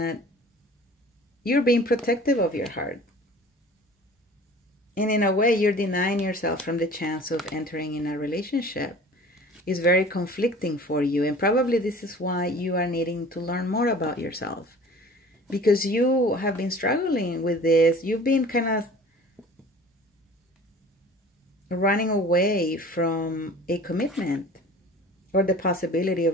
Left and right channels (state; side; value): normal; both; correlation 0.44